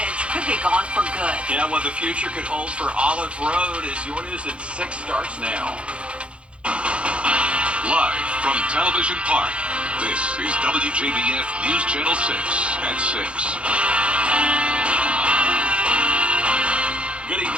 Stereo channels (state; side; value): late; left; 0.059 ms